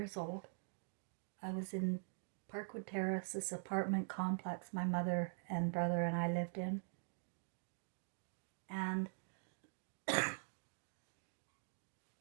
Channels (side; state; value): left; silent; digital silence